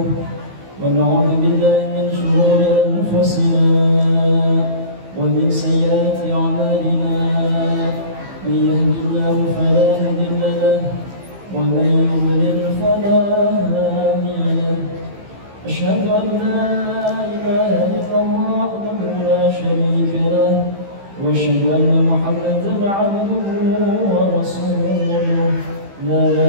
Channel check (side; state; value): left; late; 15 ms